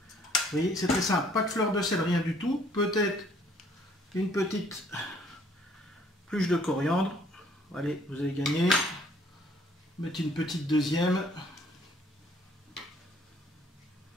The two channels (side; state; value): both; normal; correlation 0.61